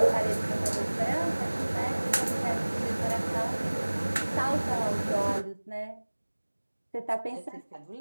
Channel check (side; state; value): both; inverted; correlation -1.00